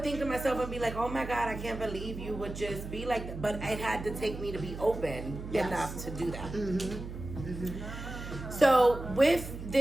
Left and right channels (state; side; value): noise; right; hum, 9 dB below the sound